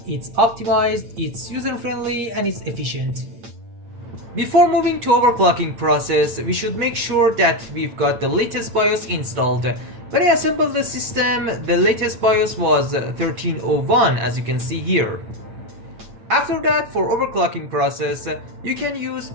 It's optimized, it's user-friendly, and it's efficient. Before moving to overclocking process, we should make sure that we've got the latest BIOS installed. When I assembled the system, the latest BIOS was 1301, as you can see here. After that, for overclocking process, you can use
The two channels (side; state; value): left; late; 8.6 ms